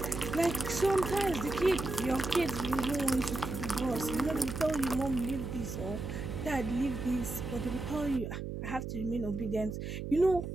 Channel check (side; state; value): right; noise; hum, 6 dB below the sound